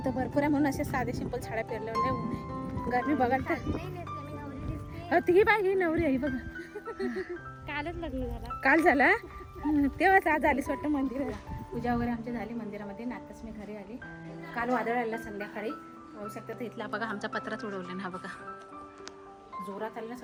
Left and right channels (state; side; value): identical; both; correlation 1.00